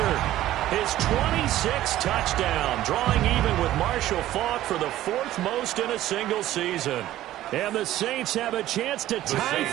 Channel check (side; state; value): left; quieter; 14.1 dB